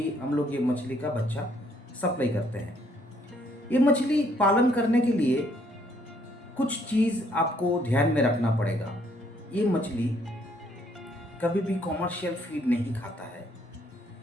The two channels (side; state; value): both; normal; correlation 0.67